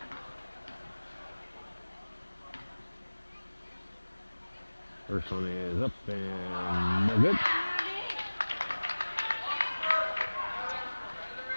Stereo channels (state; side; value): inverted; both; correlation -1.00